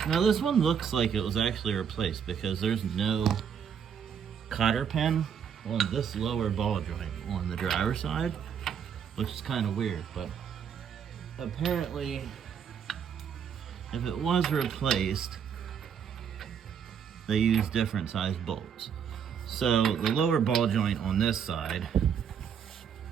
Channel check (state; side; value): quieter; left; 7.7 dB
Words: Now this one looks like it was actually replaced because there's no cotter pin on this lower ball joint on the driver's side, which is kind of weird, but apparently if it was replaced, they use different size bolts. So the lower ball joint on this side